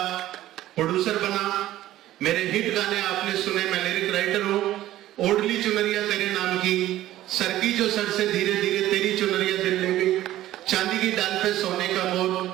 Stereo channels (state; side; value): quieter; left; 14.3 dB